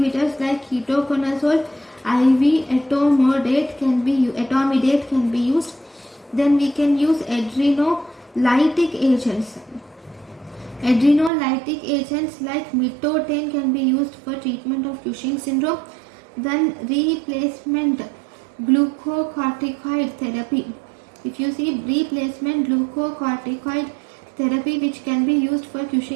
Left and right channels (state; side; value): drops out; left; at 11.3 s